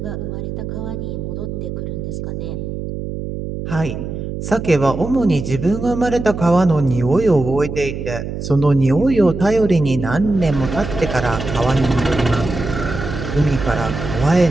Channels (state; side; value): noise; right; hum, 6 dB below the sound